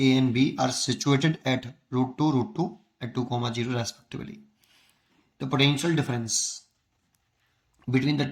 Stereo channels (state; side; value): identical; both; correlation 1.00